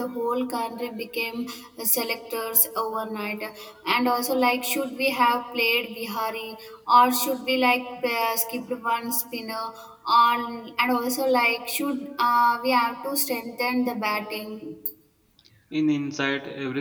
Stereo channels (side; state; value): both; identical; correlation 1.00